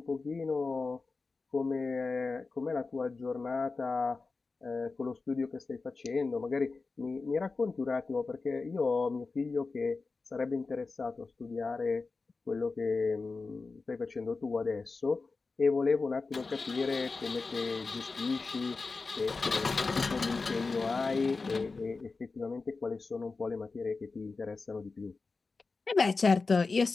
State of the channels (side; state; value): right; quieter; 4.1 dB